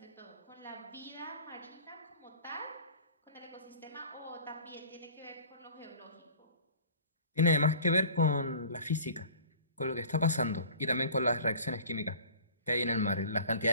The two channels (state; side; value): inverted; both; correlation -0.44